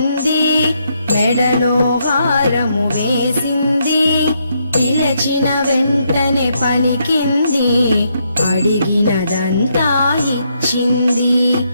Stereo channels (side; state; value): both; inverted; correlation -0.77